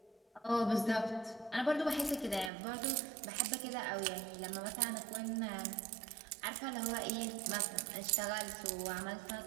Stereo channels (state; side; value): drops out; left; at 2.5 s